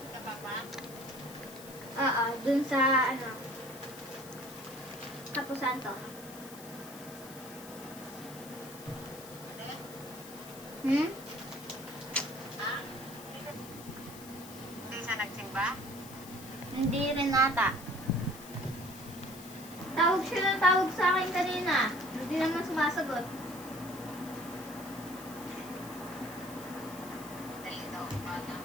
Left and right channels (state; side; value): noise; left; hiss, 16 dB below the sound